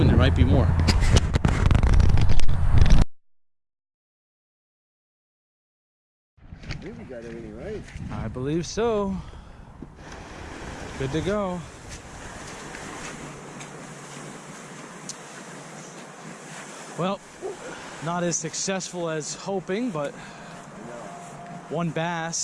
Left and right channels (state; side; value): identical; both; correlation 1.00